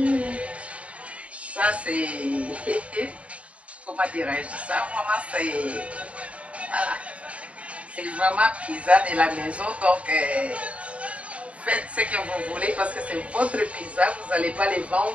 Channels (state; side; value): late; left; 0.064 ms